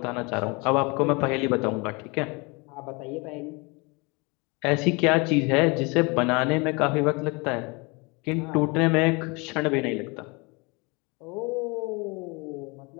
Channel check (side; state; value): right; quieter; 28.3 dB